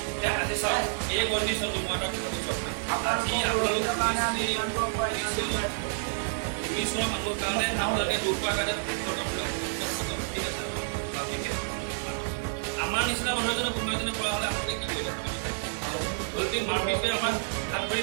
আমাৰ নিচিনা মানুহ এজনে কোনোবা এজনে কৰা হ'লে আপোনালোকে কি কৰিলে? বলতি মাৰপিটে আমাক হাত ভৰি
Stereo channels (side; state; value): left; silent; 59 dB below the other